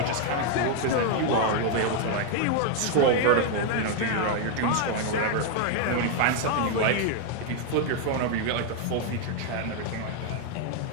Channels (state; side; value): different; both; correlation 0.01